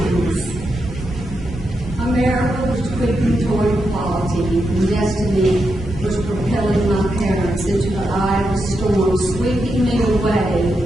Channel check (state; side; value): normal; both; correlation 0.85